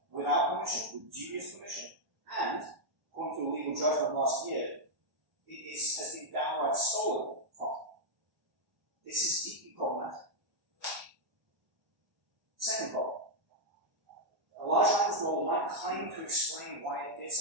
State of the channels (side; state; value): left; late; 1.1 ms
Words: without permission, with dubious permission, and, according to a legal judgment last year, has been downright stolen from. This is deeply problematic. Second problem. A large language model might claim to explain why it did